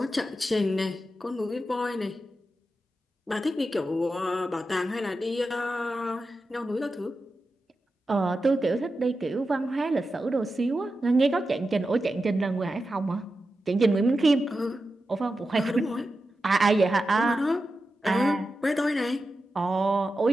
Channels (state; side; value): normal; both; correlation 0.91